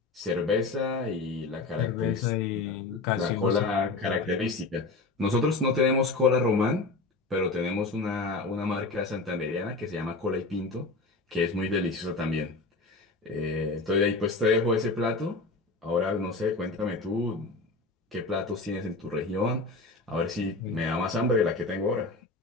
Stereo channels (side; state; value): right; quieter; 3.6 dB